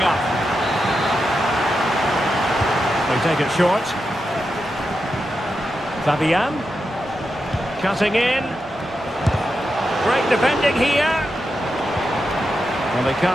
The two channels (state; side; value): normal; both; correlation 0.88